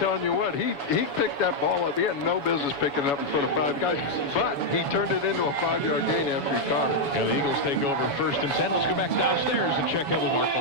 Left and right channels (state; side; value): late; right; 7.1 ms